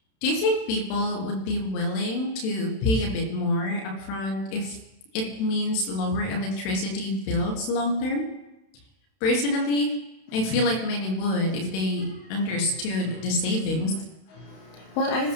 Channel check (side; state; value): right; late; 31 ms